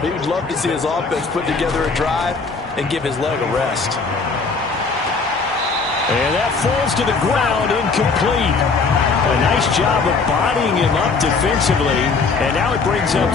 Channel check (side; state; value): right; quieter; 4.5 dB